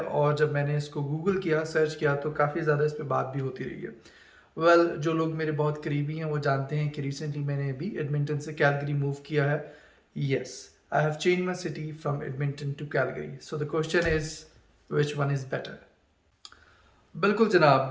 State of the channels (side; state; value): both; identical; correlation 1.00